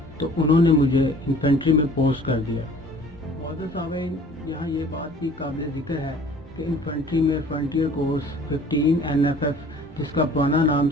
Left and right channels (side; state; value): both; normal; correlation 0.50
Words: تو انہوں نے مجھے انفینٹری میں پوسٹ کر دیا۔ معزز سامعین، یہاں یہ بات بھی قابل ذکر ہے کہ انفینٹری میں فرنٹیئر کورس 15 NFF، جس کا پرانا نام